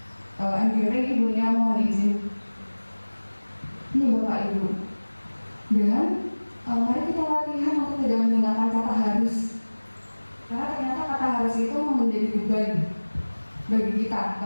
MGP. Ibunya mohon izin. Ini Bapak Ibu. Dan mari kita latihan untuk tidak menggunakan kata harus. Karena ternyata kata harus itu menjadi beban bagi kita,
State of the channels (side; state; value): both; inverted; correlation -1.00